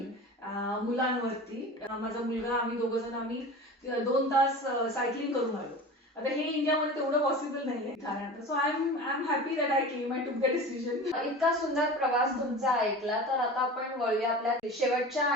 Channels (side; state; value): both; normal; correlation 0.34